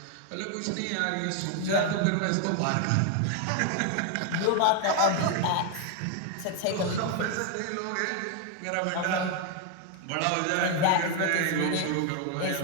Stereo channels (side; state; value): both; different; correlation 0.01